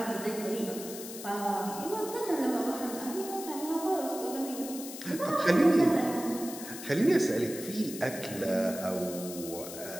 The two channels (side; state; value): left; noise; hiss, 11 dB below the sound